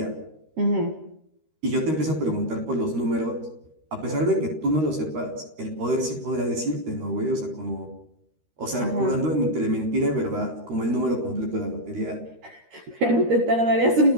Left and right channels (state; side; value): late; left; 13 ms